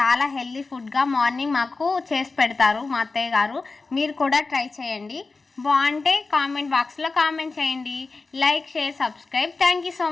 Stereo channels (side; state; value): right; quieter; 3.9 dB